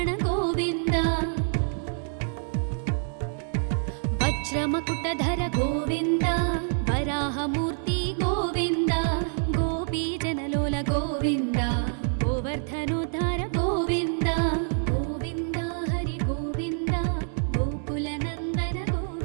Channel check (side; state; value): left; silent; digital silence